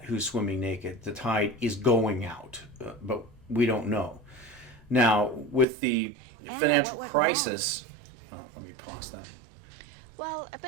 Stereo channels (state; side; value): drops out; left; at 5.7 s